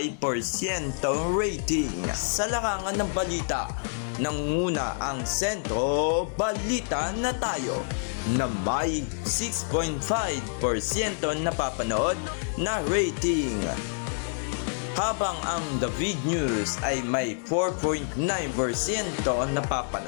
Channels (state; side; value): silent; right; digital silence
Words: rating. Sa larangan ng balita, nanguna ang Sentro Balita na Tayo na may 6.5% napapanood na rating. Habang ang David News ay may 4.9%